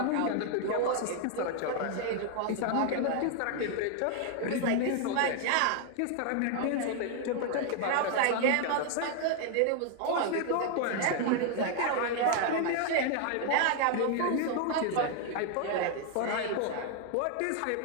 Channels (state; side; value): different; both; correlation 0.00